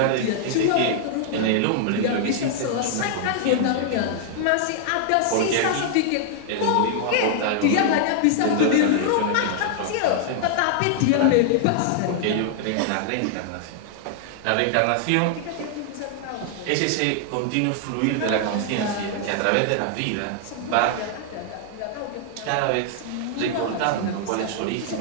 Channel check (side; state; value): both; different; correlation 0.00